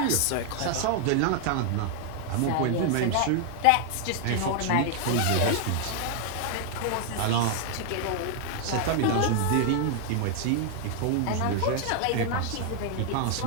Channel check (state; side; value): different; both; correlation 0.00